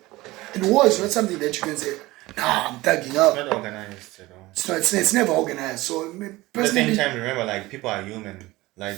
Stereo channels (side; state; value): left; quieter; 19.5 dB